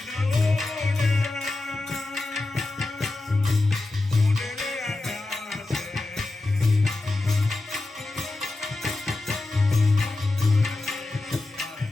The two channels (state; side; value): quieter; right; 3.0 dB